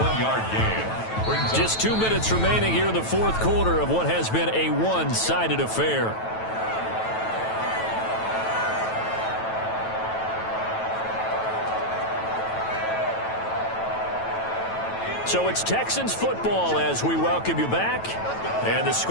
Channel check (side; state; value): right; late; 9.1 ms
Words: 1-yard gain. Just 2 minutes remaining here in the fourth quarter of what has been a one-sided affair. So it's Texans football as we welcome you back. And the